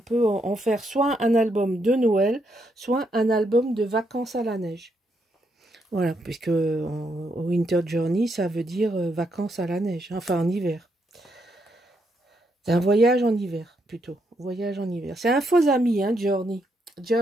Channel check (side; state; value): both; normal; correlation 0.78